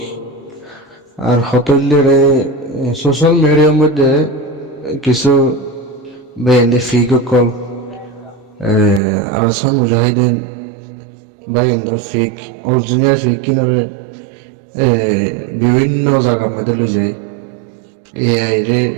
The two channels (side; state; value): left; drops out; at 9.0 s